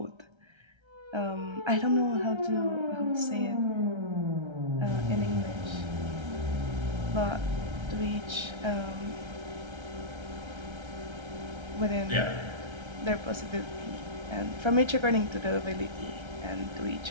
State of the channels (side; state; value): left; late; 1.3 ms